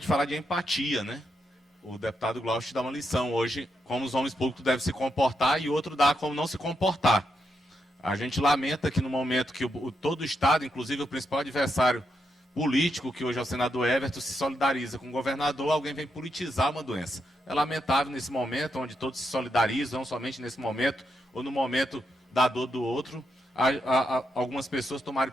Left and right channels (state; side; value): normal; both; correlation 0.82